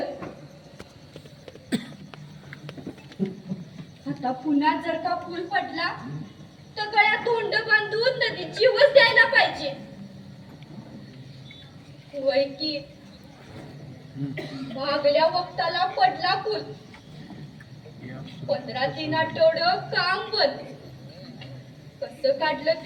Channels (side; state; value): both; identical; correlation 1.00